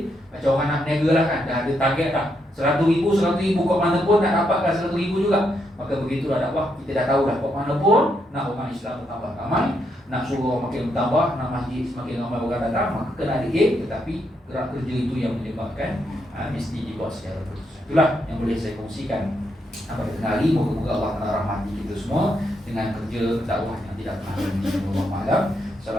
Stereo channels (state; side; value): normal; both; correlation 0.79